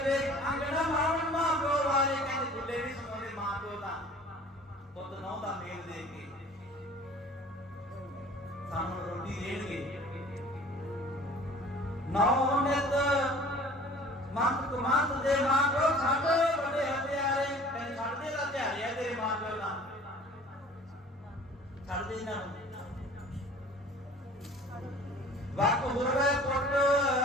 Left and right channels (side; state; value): both; normal; correlation 0.47